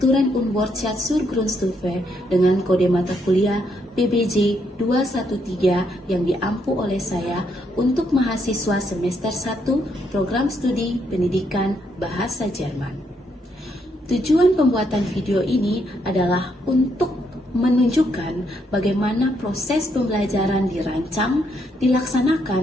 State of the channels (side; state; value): both; normal; correlation 0.75